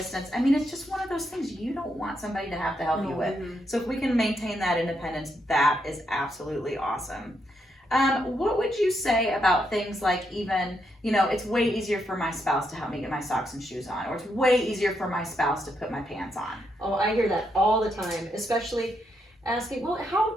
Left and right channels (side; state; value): both; normal; correlation 0.79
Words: I mean, it's just one of those things you don't want somebody to have to help you No. with. So if we can maintain that independence, that is absolutely awesome. What would you say about things like even, you know, it's way easier for my spouse to help me get my socks and shoes on, or it's way easier for my spouse to put my pants on. Oh, I hear that all the time, especially asking, well, how